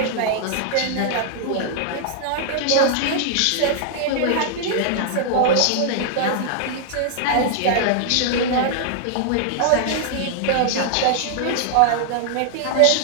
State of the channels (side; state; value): both; different; correlation -0.01